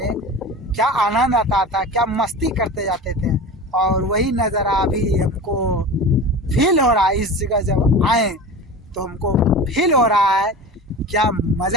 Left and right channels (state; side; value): normal; both; correlation 0.32